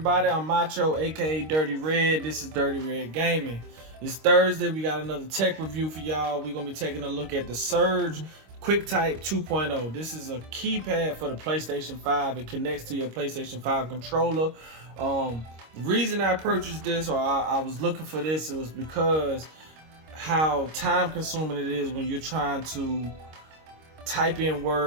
I'm Macho, aka Dirty Red. This is Dirty Red Gaming. It's Thursday. We got another tech review for y'all. We're gonna be taking a look at the Surge QuickType 2.0. This is a keypad for the PlayStation 5. It connects to your PlayStation 5 controller. The reason I purchased this, or I was looking for this, it was because how time consuming it is when you're trying to type in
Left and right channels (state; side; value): late; left; 26 ms